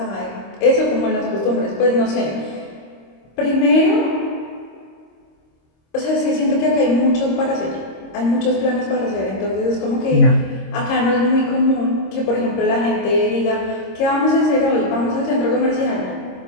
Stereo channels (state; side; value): late; right; 26 ms